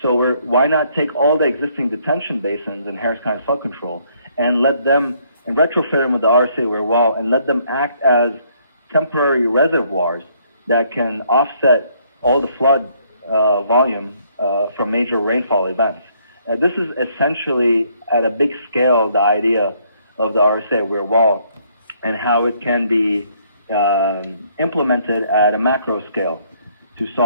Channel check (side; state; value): both; inverted; correlation -0.67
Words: So why not take all the existing detention basins in Harris County Flood Control and let them, and retrofit them with the RSA weir wall, and let them act as temporary reservoirs that can offset all the flood volume from major rainfall events. This is essentially, at a big scale, the idea of the RSA weir wall and how it can be implemented at a macro scale to